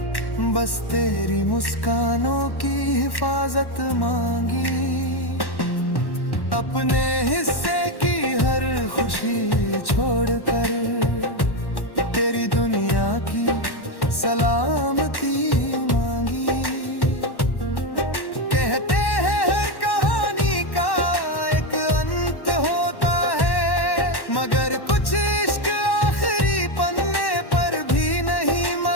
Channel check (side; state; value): right; late; 1.1 ms